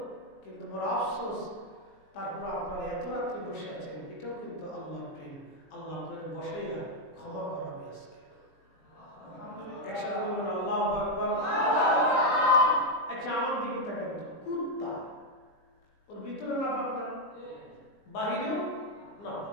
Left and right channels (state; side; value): late; right; 20 ms